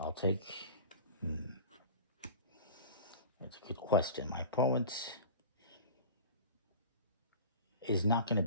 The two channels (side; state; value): both; inverted; correlation -0.37